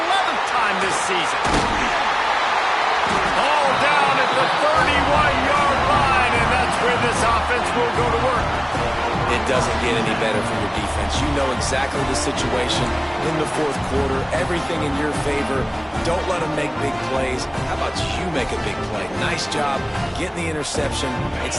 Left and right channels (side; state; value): both; identical; correlation 1.00